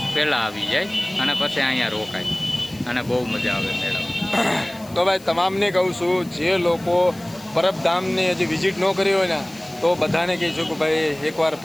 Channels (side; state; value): left; noise; hiss, 22 dB below the sound